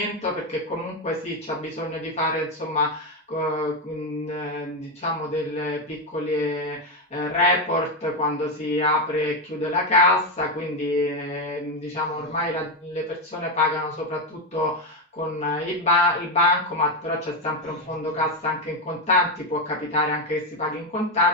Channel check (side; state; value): both; normal; correlation 0.09